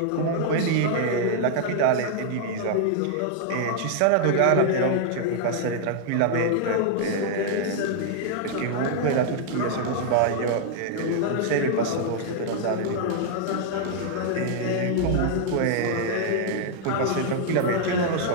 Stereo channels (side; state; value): both; different; correlation -0.01